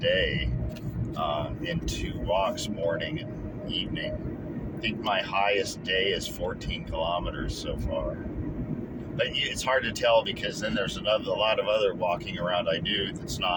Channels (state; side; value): identical; both; correlation 1.00